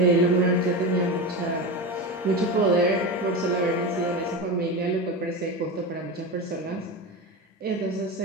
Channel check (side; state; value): both; normal; correlation 0.22